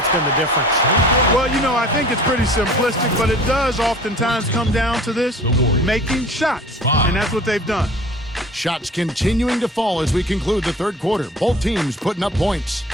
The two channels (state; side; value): normal; both; correlation 0.45